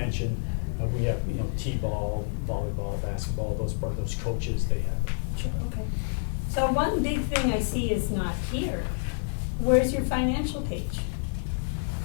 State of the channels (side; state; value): right; silent; digital silence